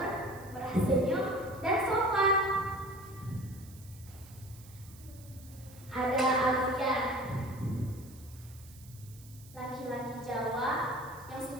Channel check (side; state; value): right; noise; hiss, 21 dB below the sound